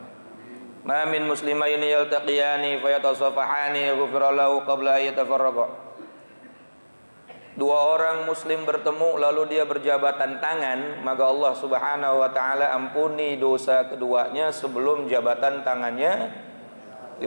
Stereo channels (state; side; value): inverted; both; correlation -1.00